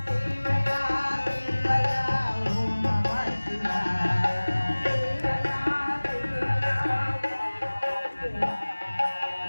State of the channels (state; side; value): inverted; both; correlation -1.00